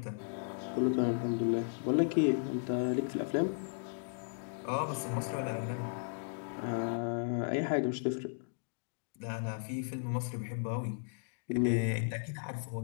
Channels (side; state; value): right; silent; digital silence